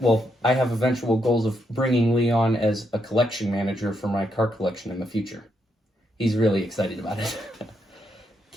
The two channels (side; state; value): both; normal; correlation 0.79